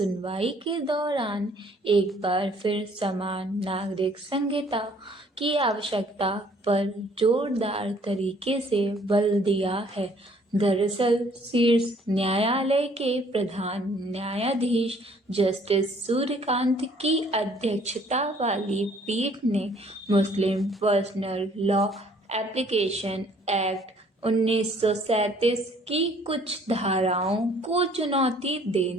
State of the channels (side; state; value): both; normal; correlation 0.60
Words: के दौरान एक बार फिर समान नागरिक संहिता की आवश्यकता पर जोरदार तरीके से बल दिया है। दरअसल शीर्ष न्यायालय के प्रधान न्यायाधीश जस्टिस सूर्यकांत की अध्यक्षता वाली पीठ ने मुस्लिम पर्सनल लॉ एप्लीकेशन एक्ट 1937 की कुछ धाराओं को चुनौती